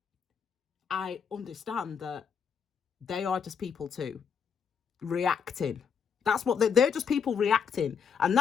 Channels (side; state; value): right; quieter; 6.6 dB